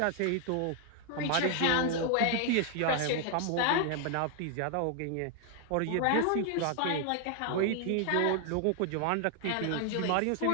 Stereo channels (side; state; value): both; different; correlation 0.00